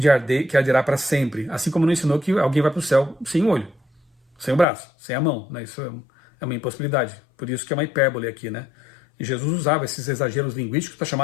que arderá para sempre, assim como não ensinou que alguém vai para o céu sem o olho, sem o braço, sem a mão, né? Isso é uma impossibilidade. Por isso que é uma hipérbole aqui, né? E Jesus usava esses exageros linguísticos para chamar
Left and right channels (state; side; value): drops out; right; at 4.7 s